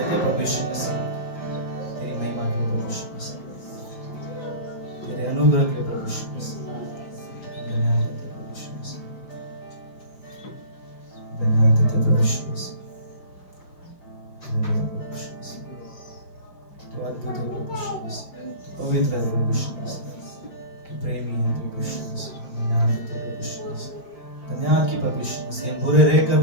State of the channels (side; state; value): right; late; 5.5 ms